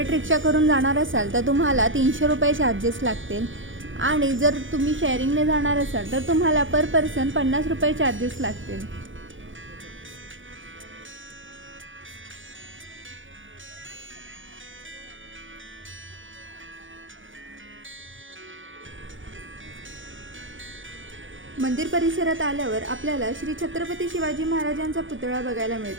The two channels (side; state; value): left; late; 0.57 ms